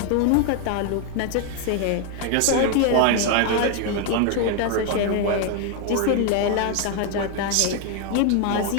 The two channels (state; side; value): different; both; correlation 0.01